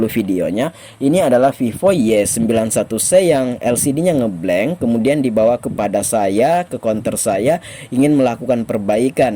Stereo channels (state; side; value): identical; both; correlation 1.00